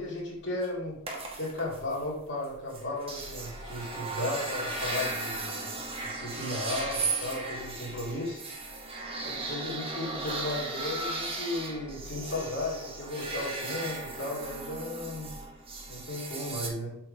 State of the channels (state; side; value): normal; both; correlation -0.01